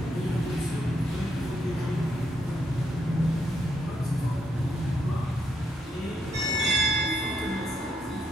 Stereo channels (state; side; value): normal; both; correlation 0.77